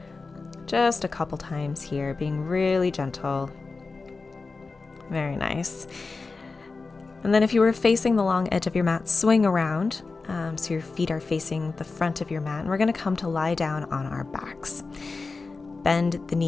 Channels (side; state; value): right; quieter; 4.0 dB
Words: Just a couple times here, being really gentle. Very nice. And then if you were facing the long edge of your mat, swing around. So your feet are facing the front of your mat, and we're going to come to lie down on our backs. Bend the